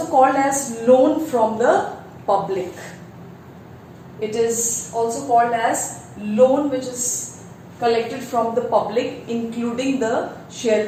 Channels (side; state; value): both; identical; correlation 1.00